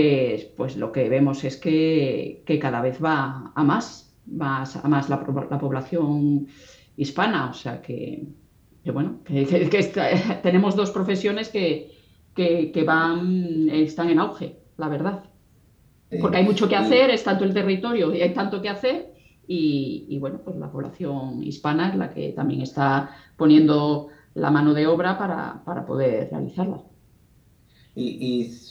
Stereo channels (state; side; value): identical; both; correlation 1.00